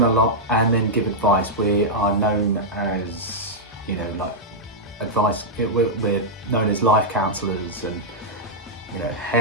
a lot and then give advice. We are known as, advice. We're known as life counsellors and,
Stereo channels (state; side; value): normal; both; correlation -0.07